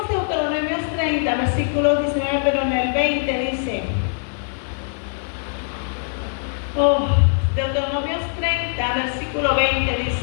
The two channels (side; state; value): right; silent; digital silence